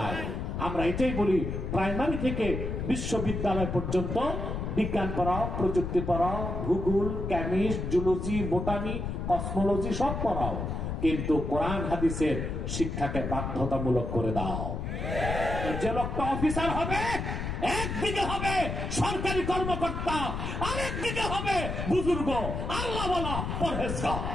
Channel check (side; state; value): left; noise; rumble, 3 dB below the sound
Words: আমরা এটাই বলি, প্রাইমারি থেকে বিশ্ববিদ্যালয় পর্যন্ত বিজ্ঞান পড়াও, প্রযুক্তি পড়াও, ভূগোল, কেমিস্ট, জুলজি, বোটানি, কসমোলজি সব পড়াও, কিন্তু কোরআন হাদিসের শিক্ষাকে বাধ্যতামূলক করে দাও। যে লোকটা অফিসার হবে, একদিকে হবে সরকারি কর্মকর্তা, আরেকদিকে হবে বুজুর্গ, আল্লাহ বলা পরহেজগার।